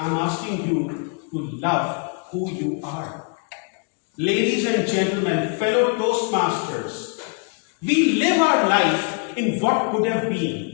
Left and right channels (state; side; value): quieter; right; 39.2 dB